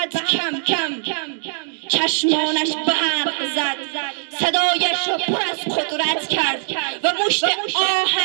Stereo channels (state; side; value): silent; left; digital silence